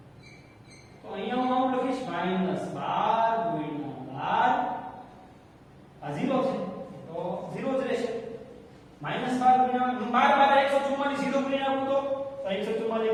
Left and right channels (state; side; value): identical; both; correlation 1.00